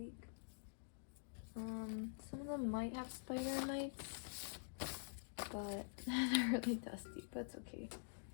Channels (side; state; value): right; silent; digital silence